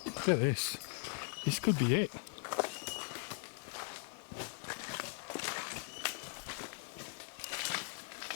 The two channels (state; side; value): silent; right; 51 dB below the other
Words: Look at this. This could be it.